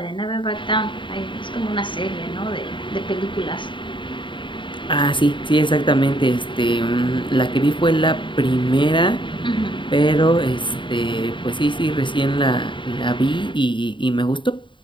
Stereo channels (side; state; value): right; late; 0.24 ms